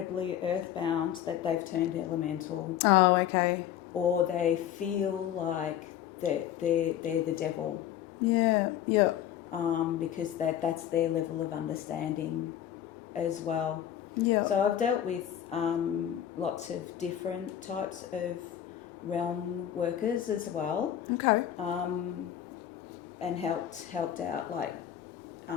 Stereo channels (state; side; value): quieter; right; 10.7 dB